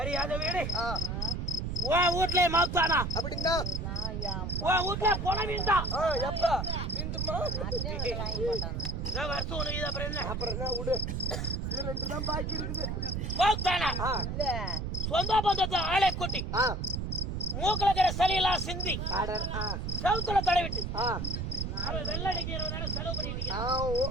அத வீடு உன் வீட்டுல மாத்தானா அப்படின்னா உன் வீட்டுல போன வீண்டான். எப்ப வீண்டுமா? வருஷம் உனக்கு இது அப்புறம் என்ன? அப்புறம் என்ன விடு. 2 தான் பாக்கி இருக்குது. மாத்தானா சொந்த பந்தத்தை ஆளை கூட்டி மூக்குல இருக்கிற சளியெல்லாம் சிந்தி செவுத்துல தடவிட்டு அவன் வெள்ளடிக்கிறவனால செலவு பண்ணிட்டு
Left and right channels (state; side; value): noise; right; rumble, 2 dB below the sound